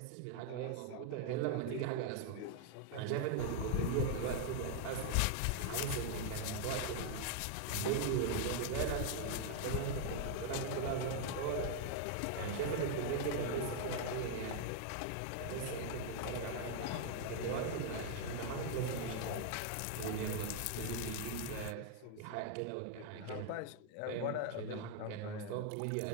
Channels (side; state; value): both; different; correlation 0.00